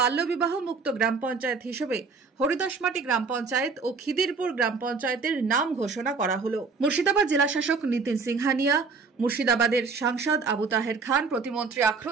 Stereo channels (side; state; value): left; quieter; 4.8 dB